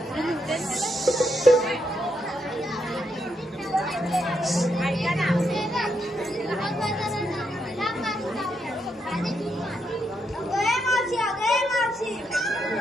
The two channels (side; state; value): both; normal; correlation 0.80